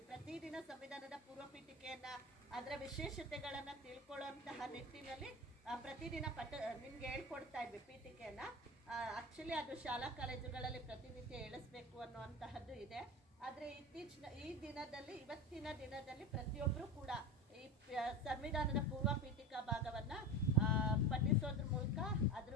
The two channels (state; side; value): normal; both; correlation 0.27